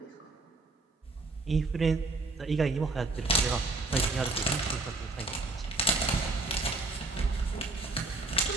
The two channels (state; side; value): quieter; left; 3.2 dB